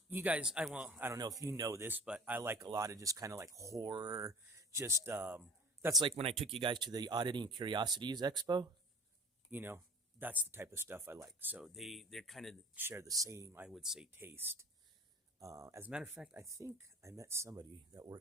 you guys, I don't know if you know this, but I like a lot of just kind of like horror. Just, that's like when I took you guys to the Oddity and Curiosities Expo. You know, that's the type of stuff I like. So they're kind of share the same, I would say, taste. As a matter of fact, I think I met somebody that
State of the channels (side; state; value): both; normal; correlation 0.41